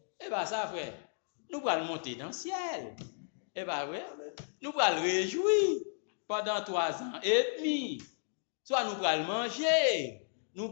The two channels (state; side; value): silent; right; digital silence